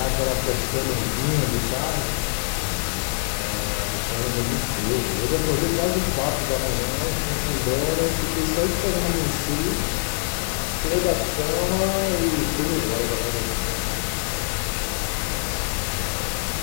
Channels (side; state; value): right; silent; 63 dB below the other